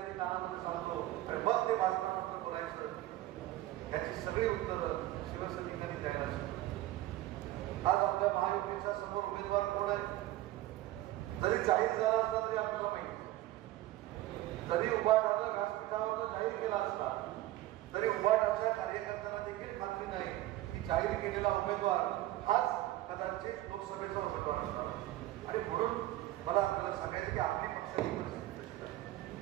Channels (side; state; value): left; quieter; 15.7 dB